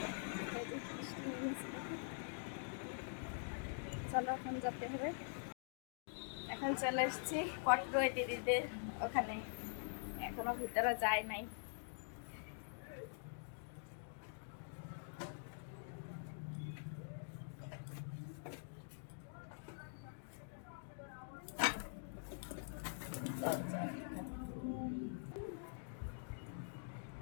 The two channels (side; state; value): right; silent; digital silence